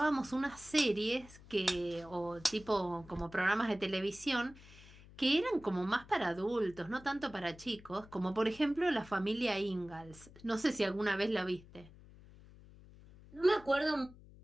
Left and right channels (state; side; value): noise; left; hum, 21 dB below the sound